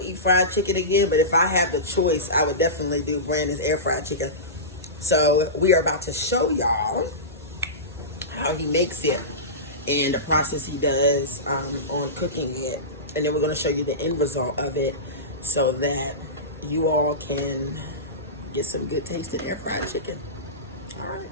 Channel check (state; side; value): normal; both; correlation -0.20